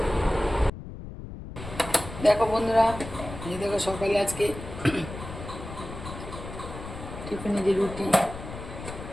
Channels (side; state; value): left; noise; rumble, 11 dB below the sound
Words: দেখো বন্ধুরা, এই দেখো সকালে আজকে টিফিনে যে